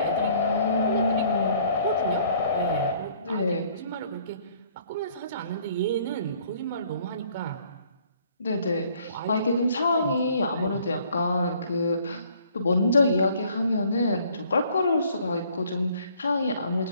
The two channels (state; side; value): inverted; both; correlation -0.60